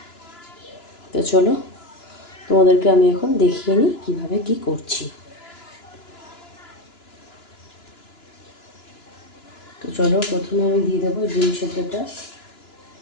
তো চলো তোমাদেরকে আমি এখন দেখিয়ে নিই কীভাবে কী করছি। তো চলো প্রথমে আমি দিয়ে দেবো ডিম সেদ্ধটা।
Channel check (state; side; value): late; right; 2.9 ms